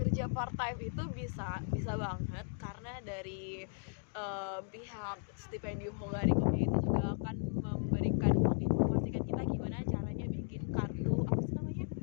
part time itu bisa banget, karena dari pihak stipendium Hungarikum itu juga akan memberikan menginformasikan kita gimana caranya bikin kartu, apa sih namanya,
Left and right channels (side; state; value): right; silent; digital silence